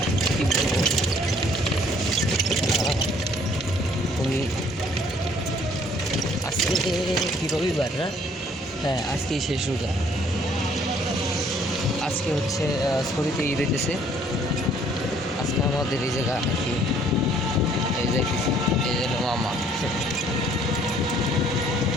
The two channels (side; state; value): both; normal; correlation 0.60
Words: কি বলবো, খুবই আজকে কি রবিবার না? হ্যাঁ, আজকেই শেষ রোজা। আজকে হচ্ছে ছড়িতে ঈদ হইতেছে। আজকে আমাদের এই জায়গা আর কি, এই যাইতেছি, এই জন্য মামা।